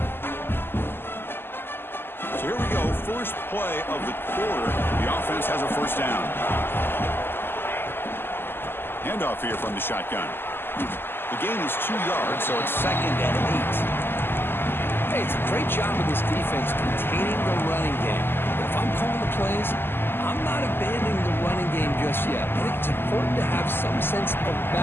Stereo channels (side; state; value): right; late; 0.10 ms